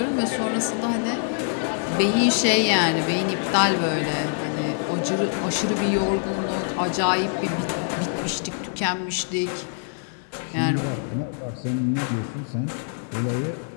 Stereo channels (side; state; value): right; silent; 58 dB below the other